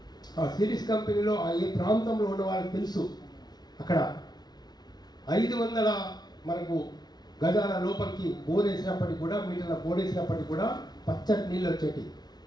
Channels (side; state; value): right; late; 0.19 ms